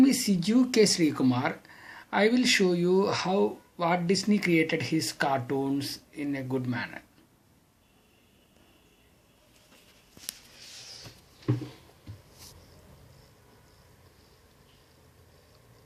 is Siju K. Kumar. I will show you how Walt Disney created his cartoons in a good manner.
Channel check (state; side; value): identical; both; correlation 1.00